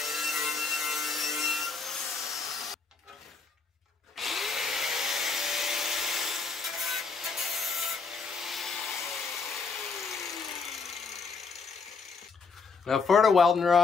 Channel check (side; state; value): right; quieter; 4.8 dB